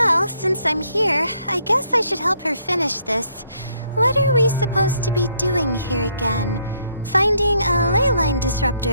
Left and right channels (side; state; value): both; inverted; correlation -0.70